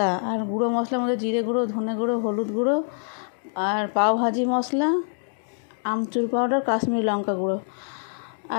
আর গুঁড়ো মশলার মধ্যে জিরে গুঁড়ো, ধনে গুঁড়ো, হলুদ গুঁড়ো, আর পাওভাজি মশলা, আমচুর পাউডার, কাশ্মীরি লঙ্কা গুঁড়ো,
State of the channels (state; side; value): silent; right; digital silence